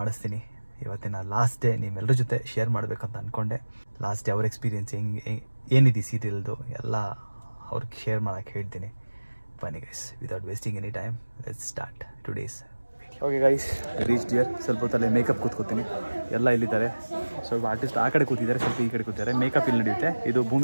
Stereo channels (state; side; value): inverted; both; correlation -1.00